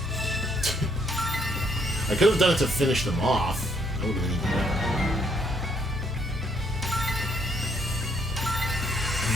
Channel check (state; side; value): normal; both; correlation 0.70